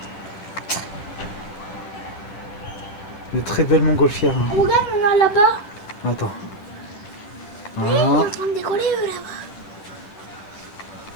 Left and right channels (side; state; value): right; late; 10 ms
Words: De très belles montgolfières. Hein. Regarde, on a là-bas. Attends. Ils Voilà. sont en train de décoller eux là-bas.